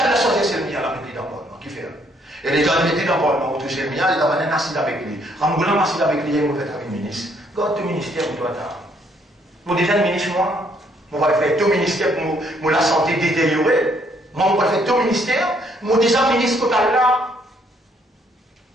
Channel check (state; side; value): normal; both; correlation 0.68